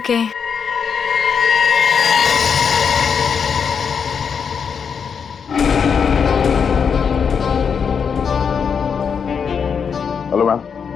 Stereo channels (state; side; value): quieter; right; 6.6 dB